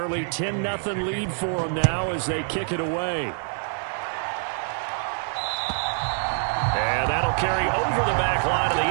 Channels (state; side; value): silent; left; digital silence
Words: 10-0 lead for them now as they kick it away. And that'll carry over the back line of the